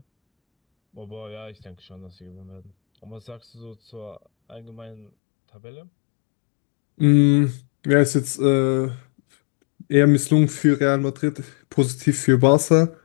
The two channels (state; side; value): drops out; right; at 5.1 s